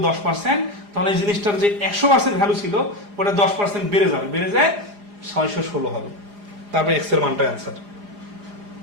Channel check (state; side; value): late; left; 4.9 ms